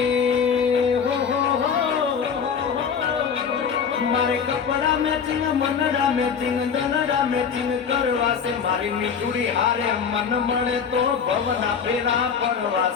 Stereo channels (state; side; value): quieter; right; 6.7 dB